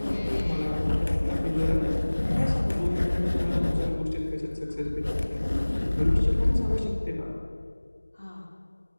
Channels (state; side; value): inverted; both; correlation -1.00